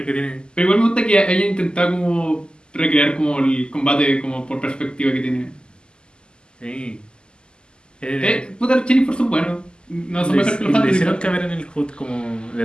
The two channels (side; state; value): right; late; 0.048 ms